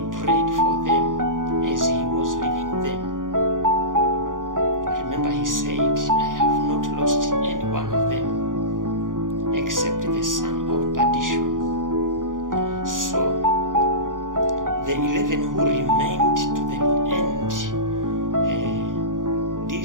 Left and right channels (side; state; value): left; late; 0.89 ms